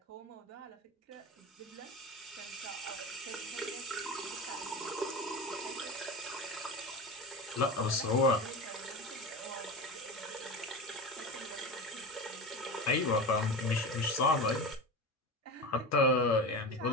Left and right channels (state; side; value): normal; both; correlation 0.26